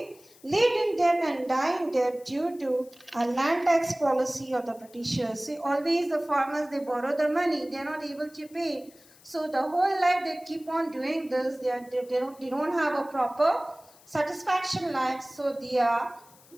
lived in debt and died in debt due to a land tax policy of the Britishers. See, always the farmers, they borrow the money, they are not able to pay. So the whole life they keep on doing this, they don't have a proper satisfaction life, so they are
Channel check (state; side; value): noise; left; hiss, 26 dB below the sound